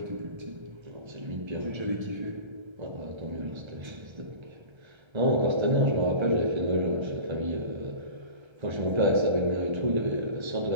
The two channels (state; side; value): late; left; 1.3 ms